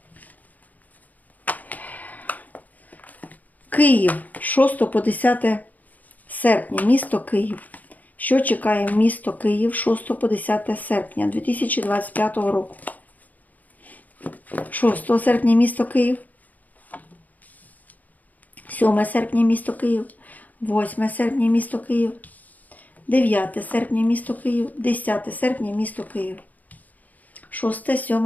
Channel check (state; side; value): late; right; 0.080 ms